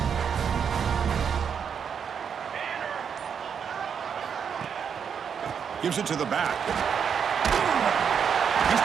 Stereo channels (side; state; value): left; quieter; 7.2 dB